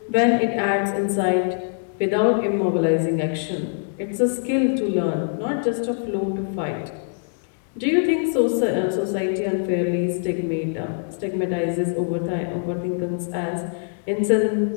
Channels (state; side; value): silent; right; digital silence